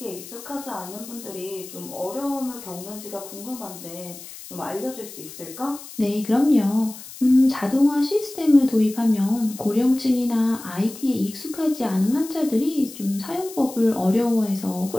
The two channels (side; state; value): left; noise; hiss, 15 dB below the sound